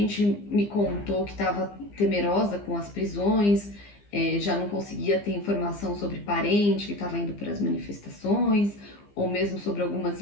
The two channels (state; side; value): late; right; 15 ms